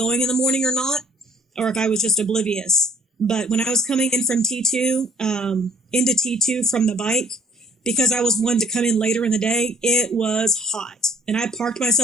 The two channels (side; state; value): both; normal; correlation 0.59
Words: in the morning or not, or if I was just oblivious. But when I was coming in from T2, into T2 from the bike, because I was one to come in later in the day, it was hot. And I parked